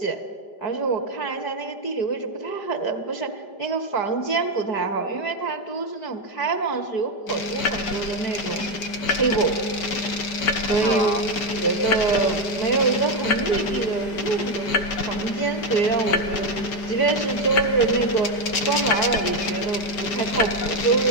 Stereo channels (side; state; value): right; late; 5.3 ms